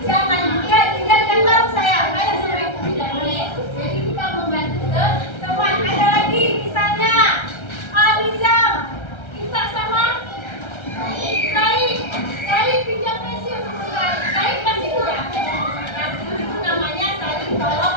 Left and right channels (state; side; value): late; right; 1.3 ms